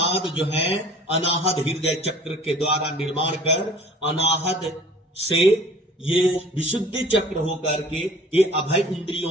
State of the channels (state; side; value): normal; both; correlation 0.47